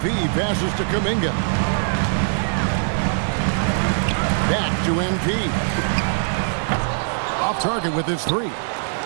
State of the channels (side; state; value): left; silent; digital silence